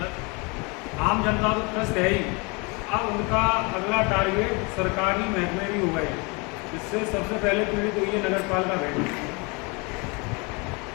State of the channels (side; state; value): right; quieter; 29.5 dB